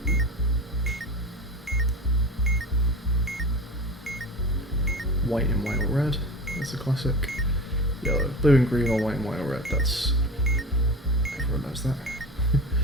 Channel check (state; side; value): normal; both; correlation 0.32